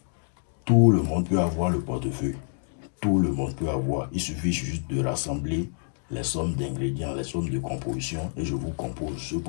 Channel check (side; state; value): right; silent; digital silence